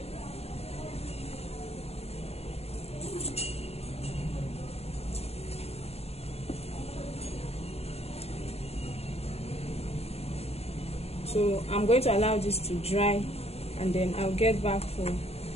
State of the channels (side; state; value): right; late; 0.30 ms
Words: So I'm going to allow this to dry, and then I'll get back for